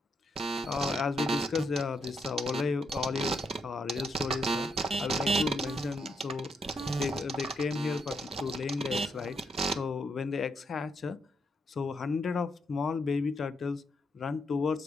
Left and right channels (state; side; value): normal; both; correlation 0.78